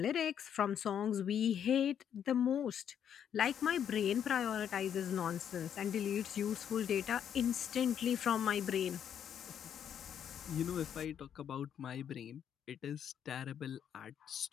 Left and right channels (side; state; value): right; quieter; 8.9 dB